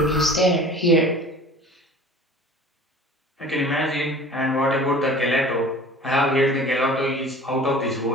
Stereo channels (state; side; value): normal; both; correlation 0.43